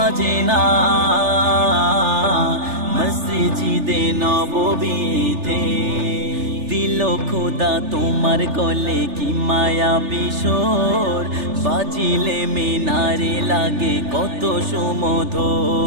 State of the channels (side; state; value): left; late; 3.4 ms